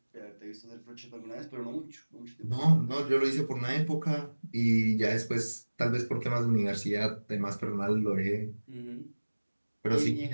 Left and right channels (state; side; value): inverted; both; correlation -1.00